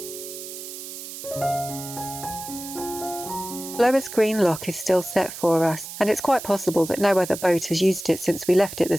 Blower's Green Lock is still set for us, and it's quite possible that no other boat has used it since we left it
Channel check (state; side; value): noise; right; hiss, 10 dB below the sound